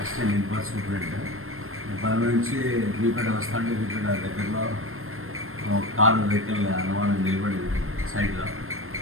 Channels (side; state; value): left; late; 0.61 ms